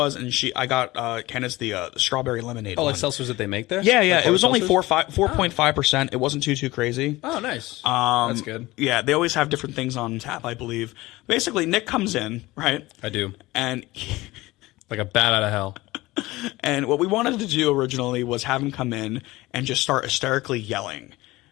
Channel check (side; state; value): right; quieter; 19.4 dB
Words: and I got Candace the strawberry lemonade. Oh, one. like seltzers that they make there? Yeah. Like It was only seltzers? 4.5%. It wasn't too crazy. Oh, nice. That's good. Yeah, they always have different things on tap, I believe. Basically, Nick comes in, right? I do. And Like a bat out of hell. and what we wanted to do originally was have him come in and just start hysterically yelling